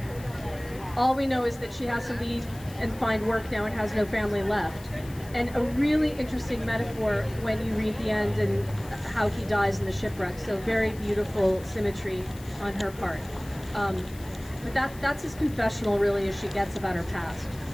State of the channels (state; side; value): noise; left; hiss, 20 dB below the sound